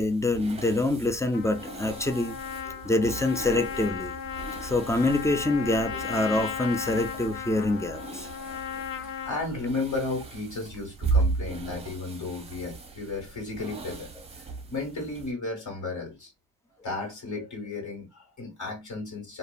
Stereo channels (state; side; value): normal; both; correlation 0.56